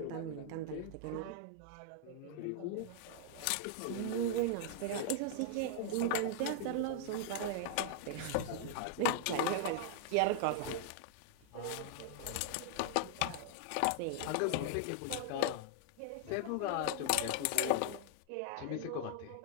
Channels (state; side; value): different; both; correlation -0.01